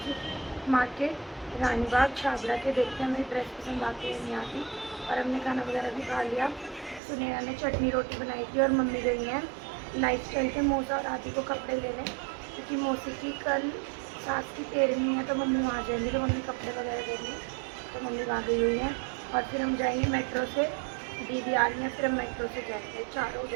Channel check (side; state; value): left; drops out; at 7.0 s